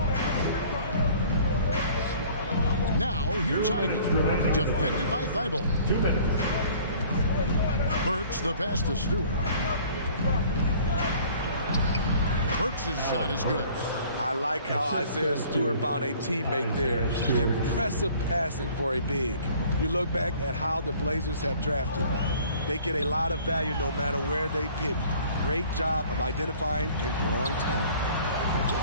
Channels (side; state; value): both; inverted; correlation -0.52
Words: Now, here's Ivy. Defended by Thibault. 2 minutes. Burks the pass to Stewart. Burks' shot is good. I like how Isaiah Stewart found a teammate there. Impressive passing for a big. You look back at how the Blazers have drafted. They get a lot of value no matter where they pick. Great job of identifying and growing talent.